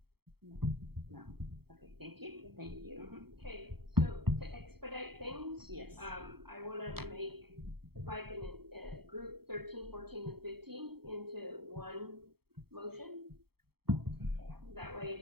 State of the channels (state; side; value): late; left; 0.96 ms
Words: No. Okay, thank you. Thank you. Okay, so to expedite things. Yes. I wanna make, if I can, group 13, 14, and 15 into one motion. That